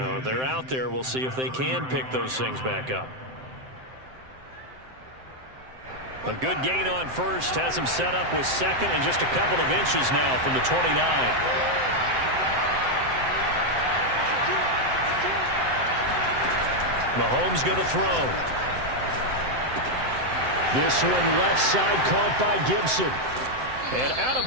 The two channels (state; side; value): late; left; 7.7 ms